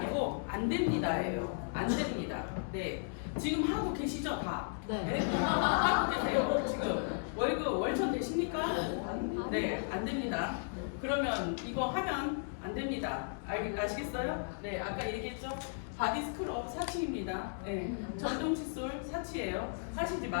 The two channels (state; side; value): silent; right; digital silence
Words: 안 됩니다예요. 안 됩니다. 네, 지금 하고 계시죠 다? 네. 하고 계세요. 지금 월급 월천 되십니까? 네, 안 됩니다. 그러면 이거 하면 안 됩니다. 아시겠어요? 네, 아까 얘기했죠? 바디 스크럽 사치입니다. 네, 전동 칫솔 사치예요. 하시지